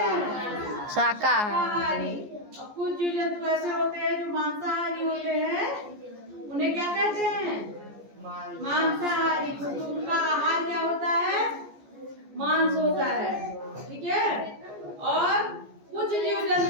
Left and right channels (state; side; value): late; left; 14 ms